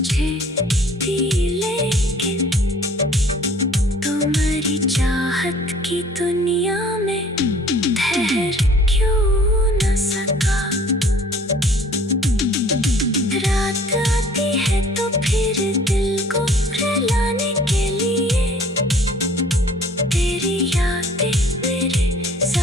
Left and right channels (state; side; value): normal; both; correlation 0.53